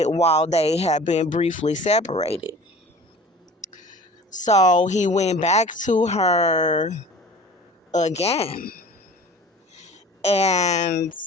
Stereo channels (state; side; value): normal; both; correlation 0.43